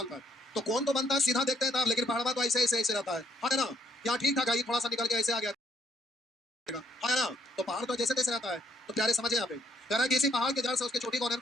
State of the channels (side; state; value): both; normal; correlation 0.67